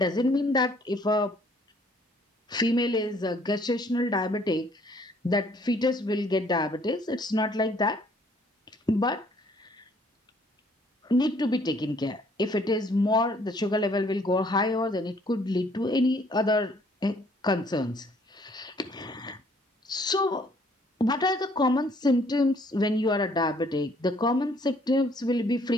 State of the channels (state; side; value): normal; both; correlation 0.62